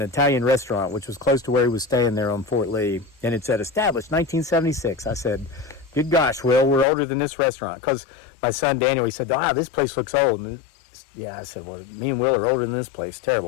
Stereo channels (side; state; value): right; drops out; at 6.9 s